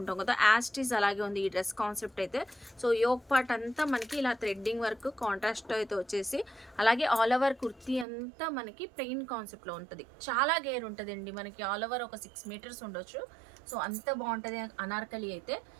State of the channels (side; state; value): left; drops out; at 8.1 s